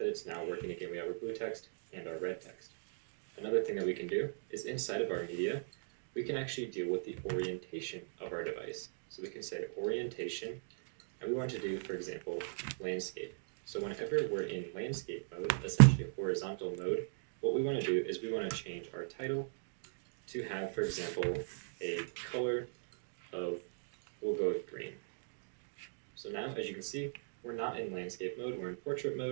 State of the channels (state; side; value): silent; left; digital silence